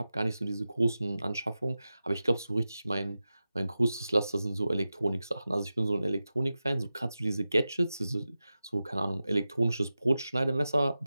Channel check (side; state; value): both; inverted; correlation -0.93